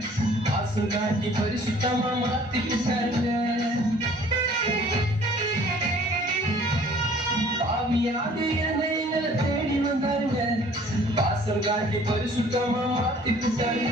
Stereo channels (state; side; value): normal; both; correlation 0.54